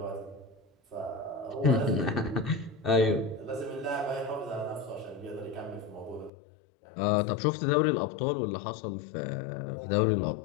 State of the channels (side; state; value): right; drops out; at 6.3 s